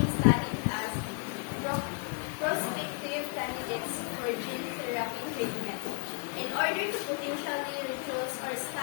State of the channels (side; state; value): right; quieter; 37.5 dB